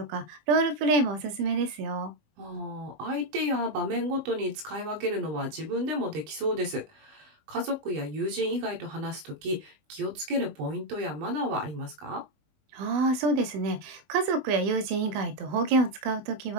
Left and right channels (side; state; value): left; late; 20 ms